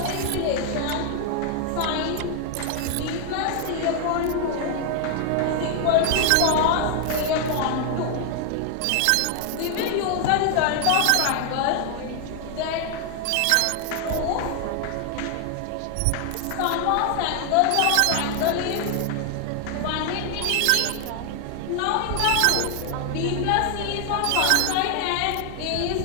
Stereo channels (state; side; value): different; both; correlation 0.00